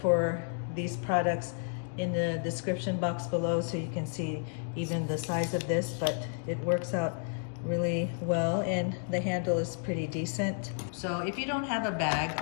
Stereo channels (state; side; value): silent; right; 57 dB below the other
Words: these products in the description box below so you can see even the size of this, but it works out really well and the handle is pretty decent. So if you don't have a bag,